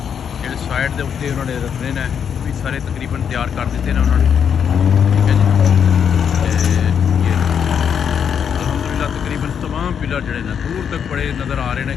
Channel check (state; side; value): quieter; right; 7.7 dB